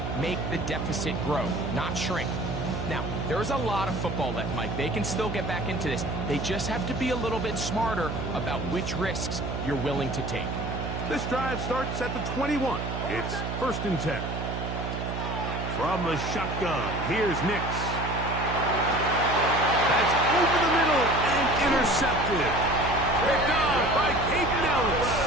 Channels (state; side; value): noise; right; hum, 4 dB below the sound